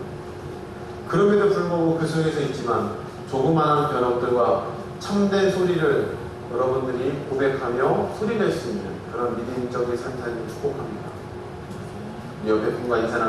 그럼에도 불구하고 그 속에서 있지만 조그마한 변화들과 참된 소리를 여러분들이 고백하며 소리낼 수 있는 그런 믿음적인 삶을 축복합니다. 옆에 분과 인사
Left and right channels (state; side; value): identical; both; correlation 1.00